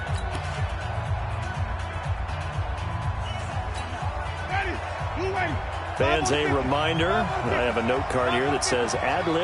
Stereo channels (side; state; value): both; identical; correlation 1.00